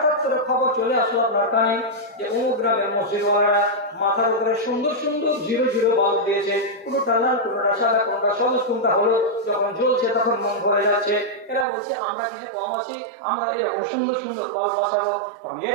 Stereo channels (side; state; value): left; drops out; at 11.7 s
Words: করে খবর চলে আসলো আপনার কানে যে অমুক গ্রামের মসজিদওয়ালারা মাথার উপরে সুন্দর সুন্দর 0 বাল্ব দিয়েছে, কোনটা লাল, কোনটা সাদা, কোনটা সবুজ, কোনটা হলুদ। যখন জ্বলছে তখন মন ভরে যাচ্ছে। এরা বলছে আমরা কিছু কম আছি, আমরা এরকম সুন্দর সুন্দর বাল্ব বসাবো।